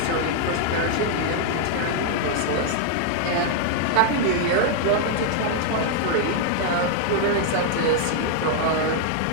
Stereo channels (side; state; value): both; different; correlation 0.00